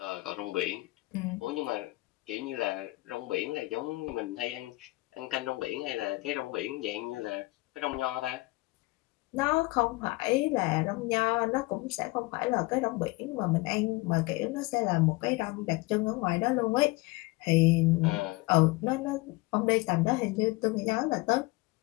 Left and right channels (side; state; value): right; quieter; 22.4 dB